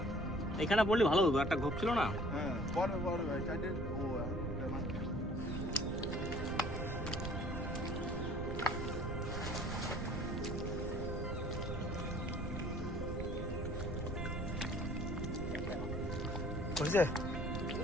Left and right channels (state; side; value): noise; right; rumble, 4 dB below the sound